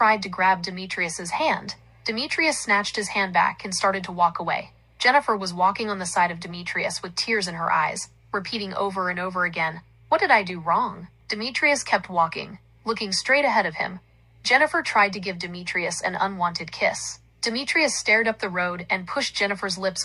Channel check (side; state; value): both; identical; correlation 1.00